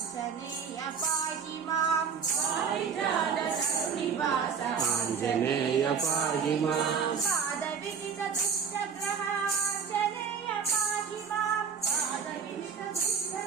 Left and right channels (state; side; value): quieter; left; 6.5 dB